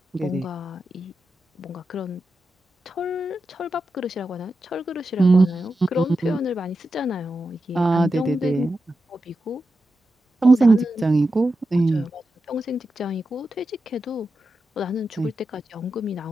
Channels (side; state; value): both; normal; correlation 0.90